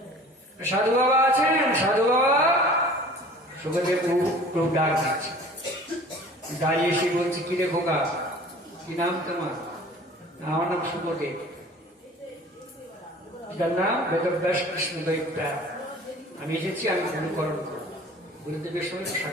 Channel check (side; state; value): both; normal; correlation 0.46